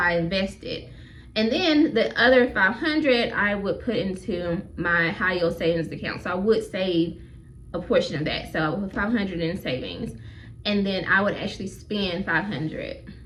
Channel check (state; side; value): identical; both; correlation 1.00